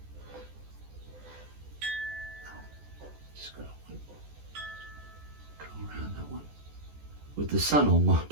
Just gotta go around that one. With the sun on my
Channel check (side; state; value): left; late; 14 ms